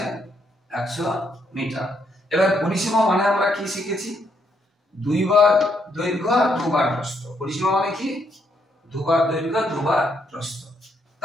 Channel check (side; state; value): both; normal; correlation 0.74